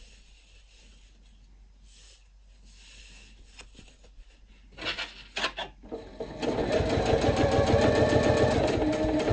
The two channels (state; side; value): identical; both; correlation 1.00